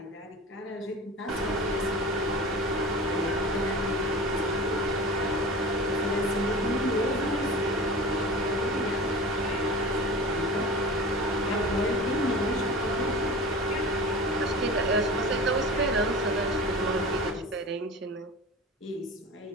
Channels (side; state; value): both; normal; correlation 0.35